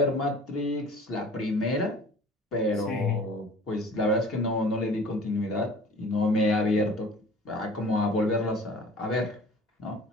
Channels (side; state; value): both; normal; correlation 0.46